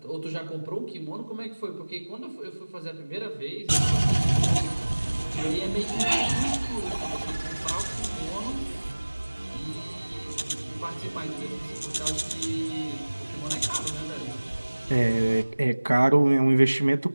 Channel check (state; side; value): inverted; both; correlation -1.00